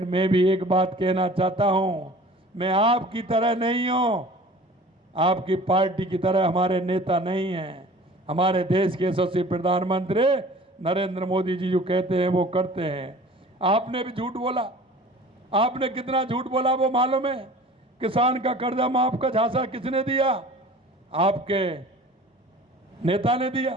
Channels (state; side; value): normal; both; correlation 0.44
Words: मैं भी एक बात कहना चाहता हूं, मैं आपकी तरह नहीं हूं, आपकी पार्टी की तरह हमारे नेता नहीं हैं। हमारे देश के यशस्वी प्रधानमंत्री नरेंद्र मोदी जी जो कहते हैं वो करते हैं। आपने भी झूठ बोला। आपने कितना झूठ बोला वो मालूम है? किसान का कर्जा माफ का झांसा किसने दिया? आपके नेता ने दिया।